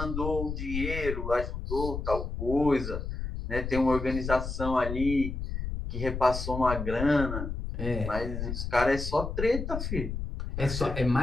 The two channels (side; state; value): left; noise; rumble, 5 dB below the sound